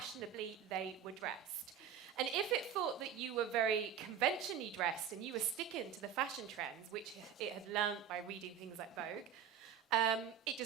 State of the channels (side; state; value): left; quieter; 8.5 dB